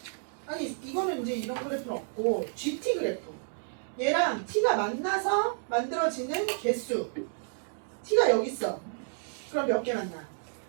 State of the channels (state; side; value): silent; left; digital silence